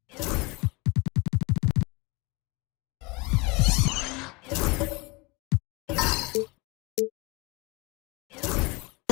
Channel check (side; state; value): right; quieter; 26.9 dB